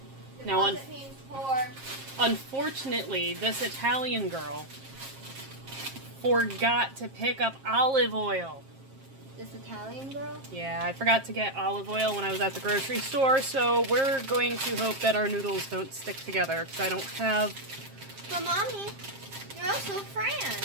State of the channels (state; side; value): late; left; 7.5 ms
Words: Now, unfortunately, this Italian girl forgot to pick up olive oil. This Italian girl? Yeah, I forgot to get olive oil when I was at the grocery store, so we're going to hope that our noodles don't stick together, because I don't have... But Mommy, you're also